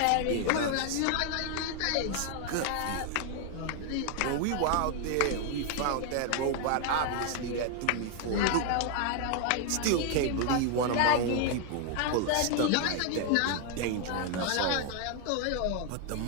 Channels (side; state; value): both; different; correlation 0.00